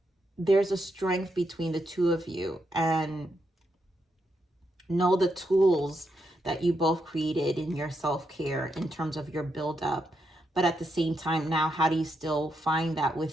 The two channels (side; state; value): both; normal; correlation 0.82